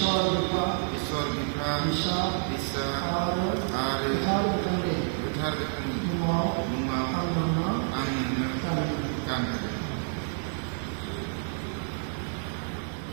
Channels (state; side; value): silent; left; digital silence